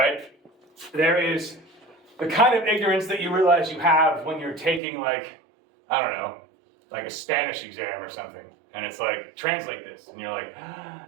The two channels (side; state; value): left; drops out; at 4.8 s